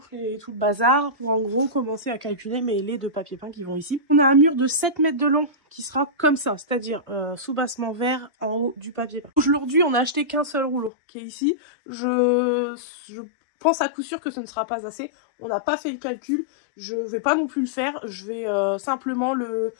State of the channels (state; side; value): drops out; right; at 10.9 s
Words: et tout le bazar pour en gros commencer à calculer mes laits de papier peint qui vont ici. On a un mur de 7 mètres de long qui sera comme ça, c'est-à-dire sous-bassement vert en haut du papier peint. Aujourd'hui on a acheté qu'un seul rouleau qui est ici. Je pense à coup sûr que ce ne sera pas assez. On n'a pas fait le calcul, je vais pas non plus le faire, je vais simplement